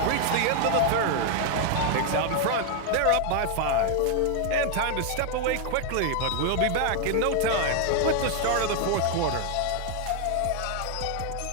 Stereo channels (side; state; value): both; different; correlation 0.00